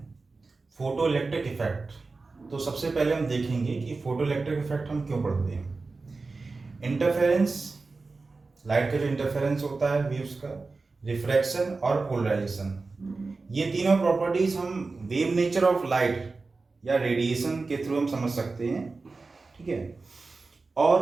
फोटो इलेक्ट्रिक इफेक्ट। तो सबसे पहले हम देखेंगे कि फोटो इलेक्ट्रिक इफेक्ट हम क्यों पढ़ते हैं। इंटरफेरेंस, लाइट का जो इंटरफेरेंस होता है वेव्स का, रिफ्रैक्शन और पोलराइजेशन, ये तीनों प्रॉपर्टीज हम वेव नेचर ऑफ लाइट या रेडिएशन के थ्रू हम समझ सकते हैं। ठीक है।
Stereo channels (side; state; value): left; quieter; 3.9 dB